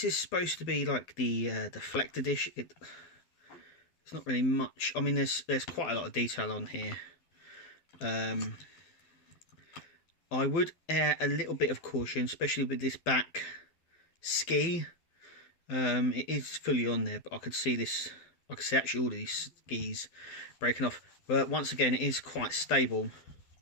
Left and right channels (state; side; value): late; right; 12 ms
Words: is supposed to be like the deflector dish. It's not really much. I mean, there's quite a lot of detail on here. I would err a little bit of caution, especially with this back ski. It is fully on there, but I could see this. I can see actually all of these skis breaking off. But once again, it is quite stable